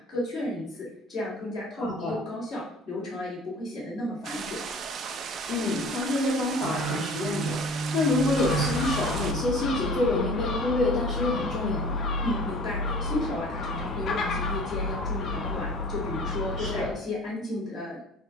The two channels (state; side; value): normal; both; correlation 0.44